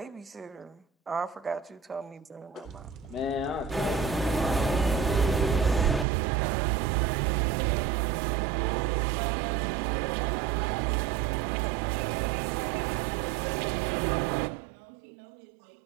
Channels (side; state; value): left; drops out; at 6.1 s